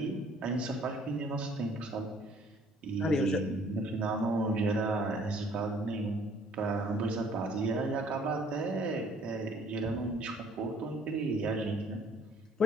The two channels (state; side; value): normal; both; correlation 0.58